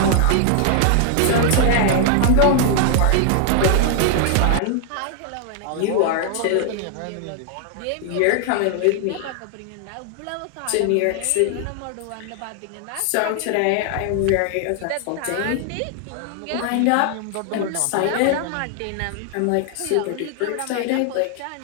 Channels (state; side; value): different; both; correlation 0.00